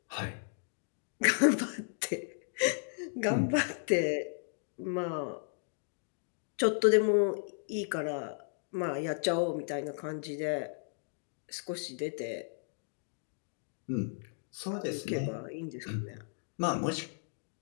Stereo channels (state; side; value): silent; right; digital silence